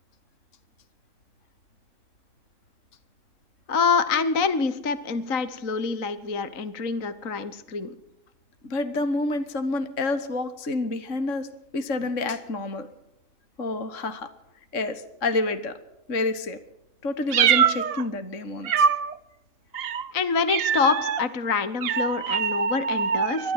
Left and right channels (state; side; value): late; right; 3.6 ms